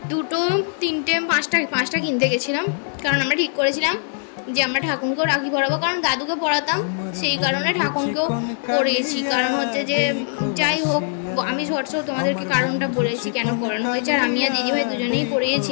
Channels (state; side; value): silent; right; digital silence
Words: দুটো তিনটে পাঁচটা কিনতে গেছিলাম, কারণ আমরা ঠিক করেছিলাম যে আমরা ঠাকুরকেও রাখি পরাবো, কারণ দাদুকে পরাতাম, সেই কারণে ঠাকুরকেও পরিয়েছি। কারণ হচ্ছে যে যাই হোক, আমি শর্টসেও তোমাদেরকে কারণটা বলেছি কেন পরানো হয়েছে। আর আমি আর দিদিভাই দুজনেই